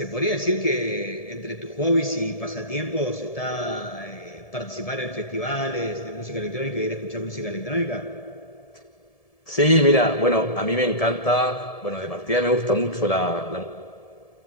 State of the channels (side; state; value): right; late; 1.7 ms